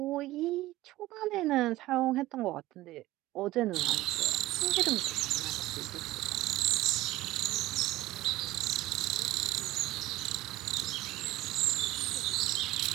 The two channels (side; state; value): left; quieter; 16.9 dB